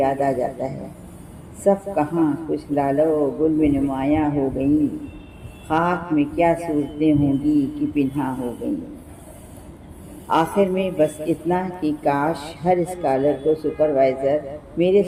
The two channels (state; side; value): identical; both; correlation 1.00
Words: آ جاتا ہے: صف کہاں کچھ لالو گل میں نمایاں ہو گئیں، خاک میں کیا صورتیں ہوں گی کہ پنہاں ہو گئیں۔ آخر میں بس اتنا کہ کاش ہر اسکالر کو میرے